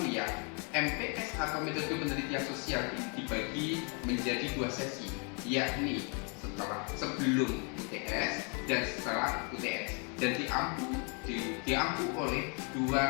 MPS atau metode penelitian sosial ini dibagi menjadi 2 sesi, yakni sebelum UTS dan setelah UTS, dan diampu oleh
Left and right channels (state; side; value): quieter; right; 36.6 dB